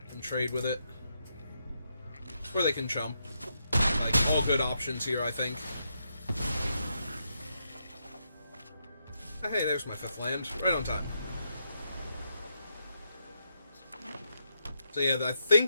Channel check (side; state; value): both; inverted; correlation -0.81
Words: and trade with it. Or they can jump. Like, all good options here, I think. Hey, there's my 5th land. Right on time. So yeah, I